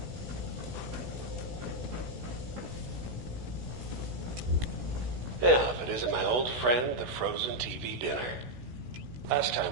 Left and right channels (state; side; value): late; left; 16 ms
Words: Yeah, if it isn't my old friend, the frozen TV dinner. Last